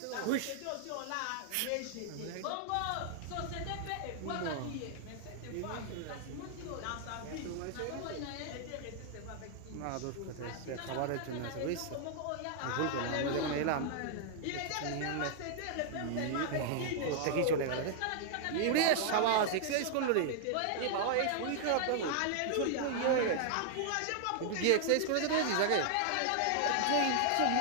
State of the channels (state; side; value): different; both; correlation -0.01